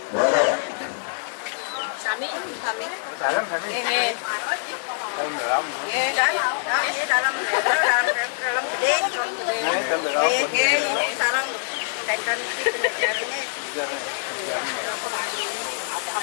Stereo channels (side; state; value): right; silent; digital silence